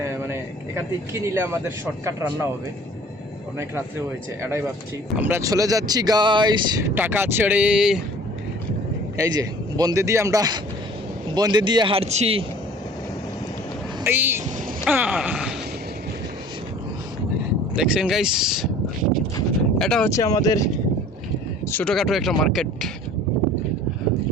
মানে এখান থেকে কি নিলে আমাদের শর্টকাট রান্না হবে, অনেক রাত্রে হয়েছে, এটাই ভাবছি। আমরা চলে যাচ্ছি গাইস টাকা ছেড়ে। এই যে বন্দে দিয়ে হাঁটছি। এই দেখছেন গাইস, এটা হচ্ছে আমাদের ছোটোখাটো একটা মার্কেট।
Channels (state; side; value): normal; both; correlation 0.48